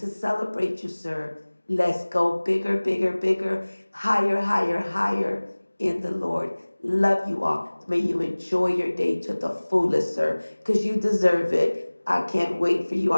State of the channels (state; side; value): inverted; both; correlation -1.00